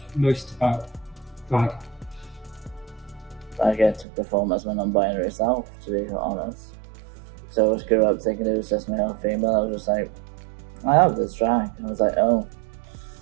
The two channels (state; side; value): drops out; left; at 4.0 s